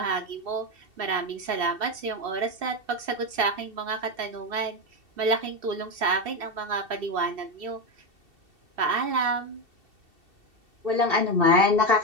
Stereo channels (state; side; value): late; left; 2.7 ms